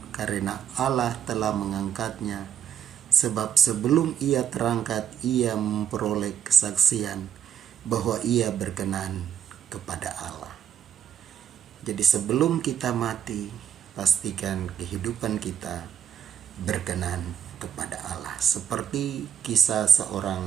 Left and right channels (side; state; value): left; quieter; 9.0 dB